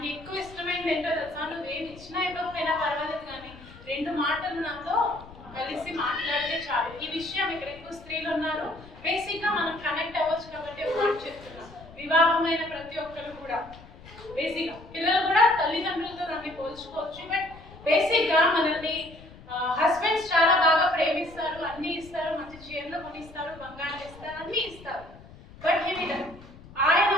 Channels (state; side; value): noise; left; rumble, 19 dB below the sound